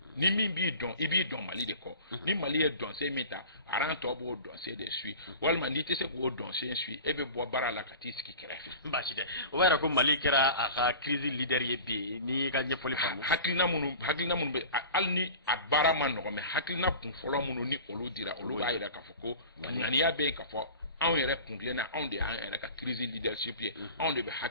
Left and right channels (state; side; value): inverted; both; correlation -0.38